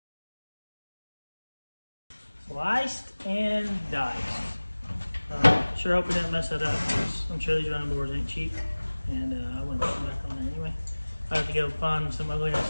Sliced and diced. Sure hope we didn't mess that up, because I'm sure these running boards ain't cheap, and I wouldn't put them back on there anyway. I have to go find some ugly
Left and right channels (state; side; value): inverted; both; correlation -1.00